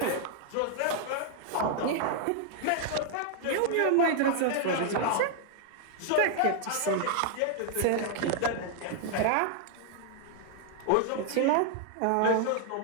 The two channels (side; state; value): both; different; correlation 0.00